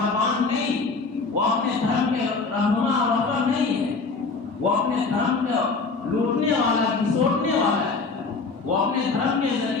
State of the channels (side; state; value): right; quieter; 4.2 dB